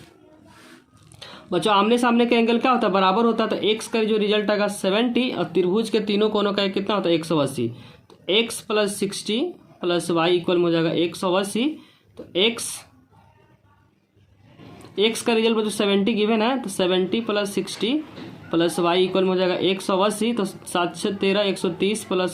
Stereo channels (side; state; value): both; identical; correlation 1.00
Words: बच्चों आमने सामने का एंगल क्या होता है बराबर होता है, तो x का जो रिजल्ट आएगा 70 और त्रिभुज के तीनों कोनों का कितना होता है 180। तो x plus 60 plus y equal में हो जाएगा 180। तो x का रिजल्ट बच्चों 70 गिवन है, तो 70 प्लस 60 प्लस वाई इक्वल में हो जाएगा 180। तो 7 से 13 130